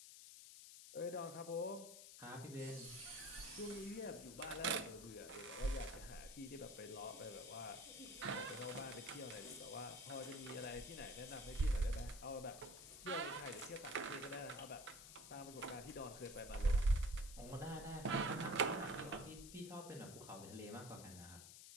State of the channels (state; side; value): noise; left; hiss, 13 dB below the sound